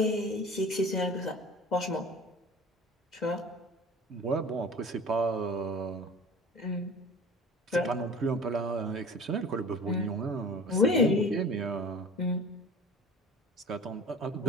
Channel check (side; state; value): both; normal; correlation 0.41